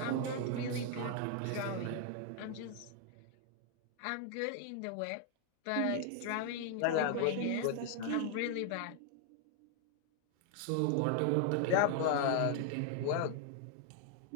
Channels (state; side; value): different; both; correlation 0.00